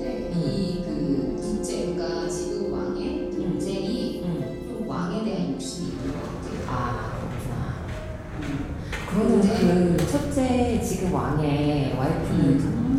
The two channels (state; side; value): identical; both; correlation 1.00